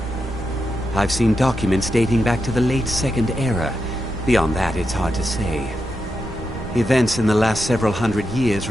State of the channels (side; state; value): right; noise; rumble, 13 dB below the sound